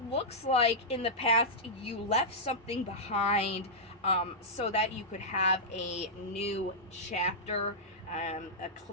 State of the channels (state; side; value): normal; both; correlation -0.11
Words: looks like in the past you left something behind, so that you could have a new chapter, a